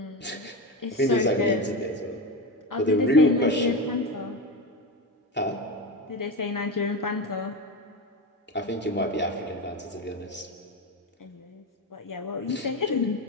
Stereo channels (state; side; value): normal; both; correlation 0.19